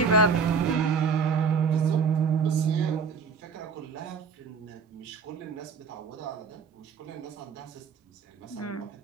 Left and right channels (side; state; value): left; quieter; 5.4 dB